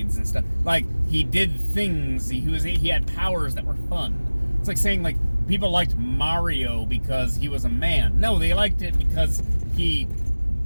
and stuff. Like, he did things. He had powers that were fun. It's like saying, like, people liked Mario because he was a man. No, they liked it because he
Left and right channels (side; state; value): both; inverted; correlation -1.00